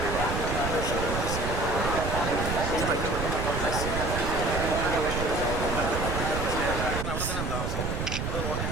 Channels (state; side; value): noise; right; rumble, 2 dB below the sound